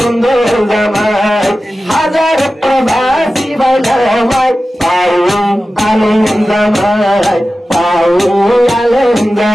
জামাই হাজার প্রবাসী বানামাই পাইয়ে আনন্দময় পাইয়ে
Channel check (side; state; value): both; normal; correlation 0.94